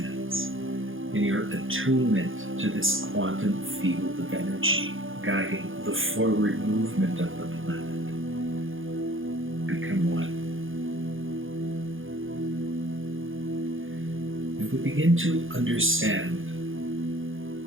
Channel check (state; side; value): late; left; 0.58 ms